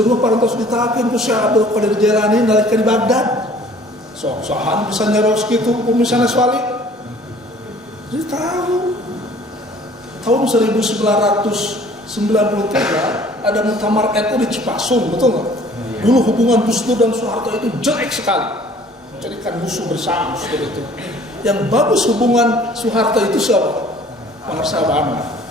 parantos ditakin Gus ya Abdul Qadir Jailani nalika di Baghdad. Sohan bisa nyeros gitu, misalnya swali. Jadi tahun 1993 ada muktamar NU di Cipasung, betul nggak? Dulu hubungan Gus Dur dan Soeharto itu jelek sekali, jadikan musuh bersama seperti itu. Yang bagus hubungan Soeharto itu siapa? Pengarsa Abah Anom.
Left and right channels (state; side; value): normal; both; correlation 0.53